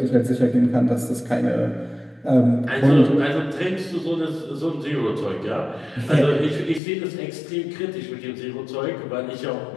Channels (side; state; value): right; drops out; at 6.8 s